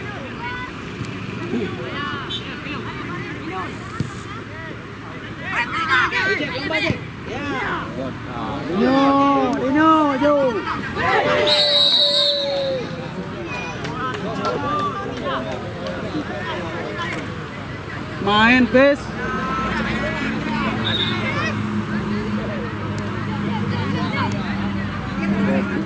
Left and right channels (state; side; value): identical; both; correlation 1.00